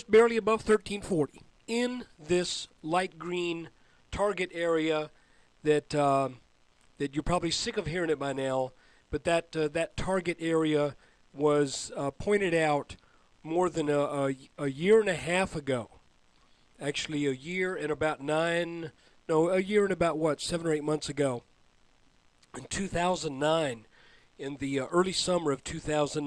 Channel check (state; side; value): identical; both; correlation 1.00